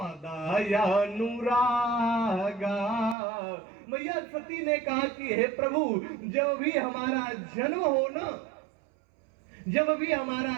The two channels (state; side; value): drops out; left; at 3.2 s